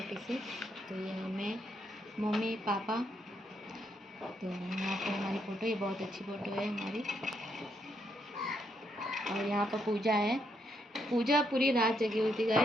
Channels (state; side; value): normal; both; correlation 0.77